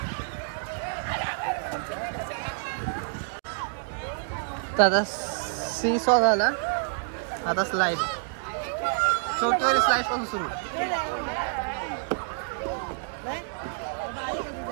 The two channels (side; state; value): left; silent; digital silence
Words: आता सी सॉ झाला. आता स्लाइड, छोटीवाली स्लाइड पासून सुरू.